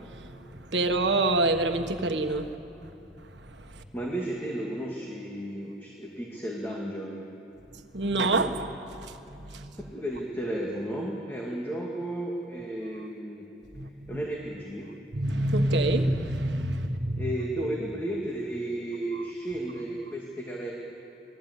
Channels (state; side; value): normal; both; correlation 0.45